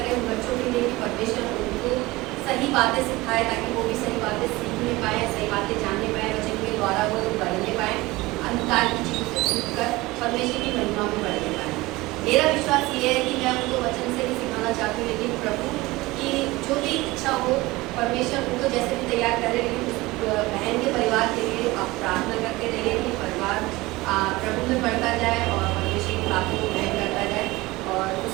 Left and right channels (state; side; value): quieter; left; 20.5 dB